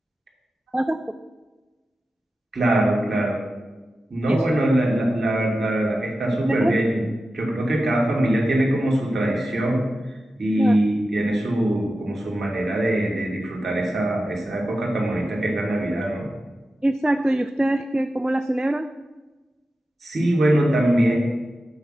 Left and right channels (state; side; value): normal; both; correlation 0.92